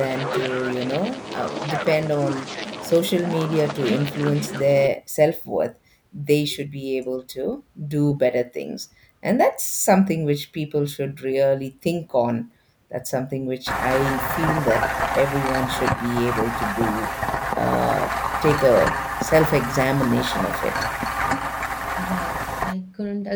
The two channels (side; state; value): both; identical; correlation 1.00